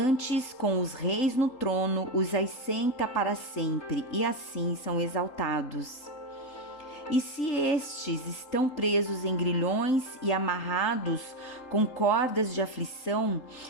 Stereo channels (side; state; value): right; late; 3.8 ms